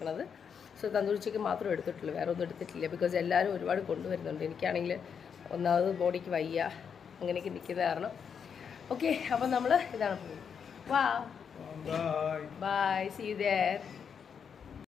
സോ തന്തൂരി ചിക്കൻ മാത്രം എടുത്തിട്ടുള്ളൂ, വേറെ ഒന്നും എടുത്തിട്ടില്ല. ബിക്കോസ് എല്ലാവരും ഒരുപാട് കൊണ്ടുവരുന്നുണ്ട്. എനിക്കാണെങ്കിൽ ഒന്നാമത് ബോഡിക്ക് വയ്യ, അങ്ങനെയൊക്കെ നിൽക്കുന്ന കാരണം. ഓക്കെ, അപ്പോൾ നമ്മൾ ഇതാണ് പോകുന്നത്. വാ, ബൈ, സീ യു ദേർ.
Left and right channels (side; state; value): right; quieter; 7.0 dB